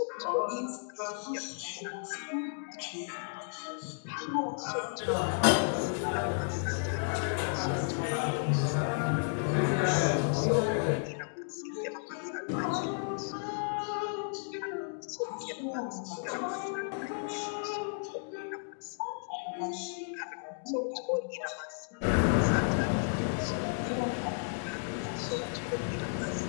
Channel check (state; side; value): silent; right; digital silence